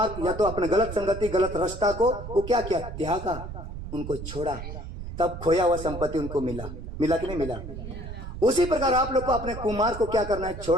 या तो अपने गलत संगति, गलत रास्ता को वो क्या किया? त्यागा, उनको छोड़ा, तब खोया हुआ संपत्ति उनको मिला। मिला कि नहीं मिला? उसी प्रकार आप लोग को अपने कुमार को क्या करना है?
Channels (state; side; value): noise; right; rumble, 9 dB below the sound